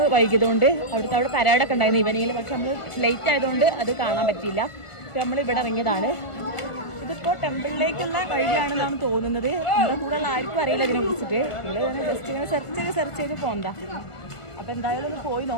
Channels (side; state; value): right; late; 1.5 ms